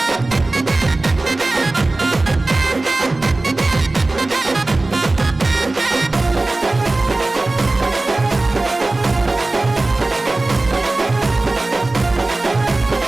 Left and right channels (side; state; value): left; quieter; 3.0 dB